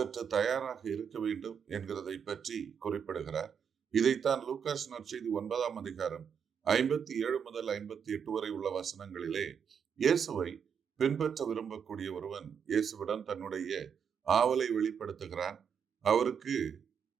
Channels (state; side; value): quieter; left; 7.2 dB